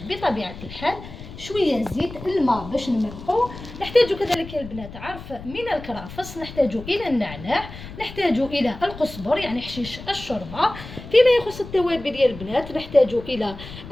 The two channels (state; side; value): noise; left; rumble, 14 dB below the sound